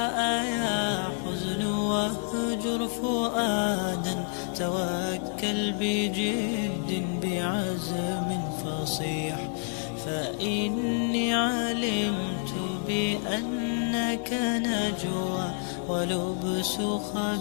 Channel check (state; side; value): silent; right; 59 dB below the other